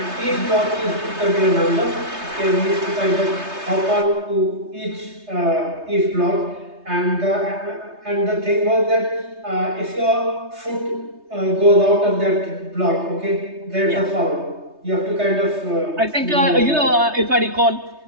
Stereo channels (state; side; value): late; left; 3.3 ms